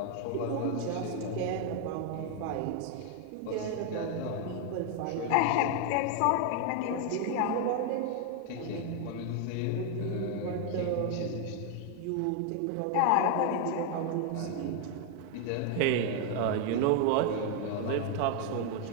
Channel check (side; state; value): both; different; correlation 0.00